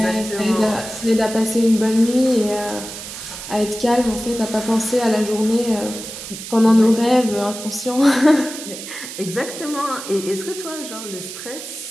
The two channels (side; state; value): right; noise; hiss, 10 dB below the sound